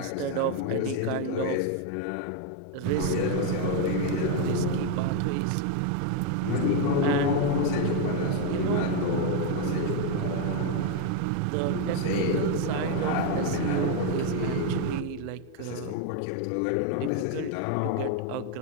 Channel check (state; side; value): different; both; correlation 0.01